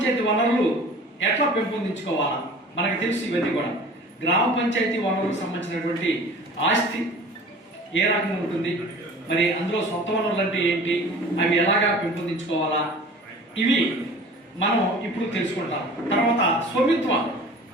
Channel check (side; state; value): both; normal; correlation 0.43